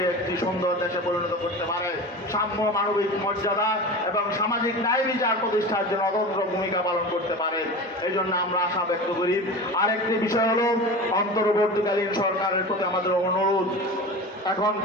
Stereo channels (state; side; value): normal; both; correlation 0.31